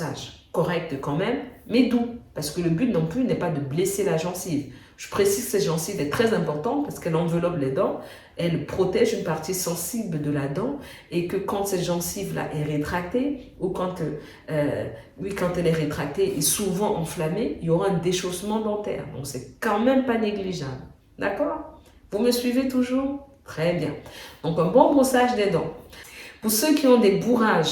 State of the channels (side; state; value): both; identical; correlation 1.00